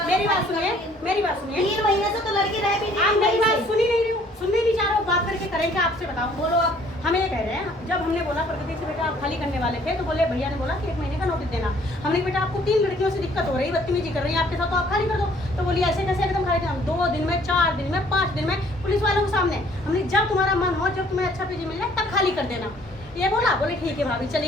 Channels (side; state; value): both; normal; correlation 0.59